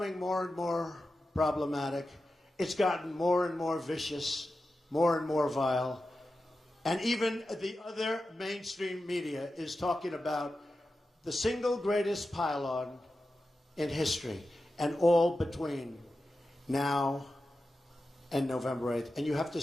more and more problematic, it's gotten more and more vicious, more and more vile, and even the other mainstream media is talking about the single greatest pile-on in history, and all between now and November 8th. And you have to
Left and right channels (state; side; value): normal; both; correlation 0.92